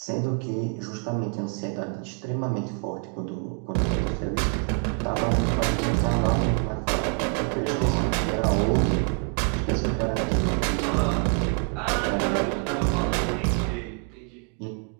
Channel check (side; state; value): left; quieter; 36.7 dB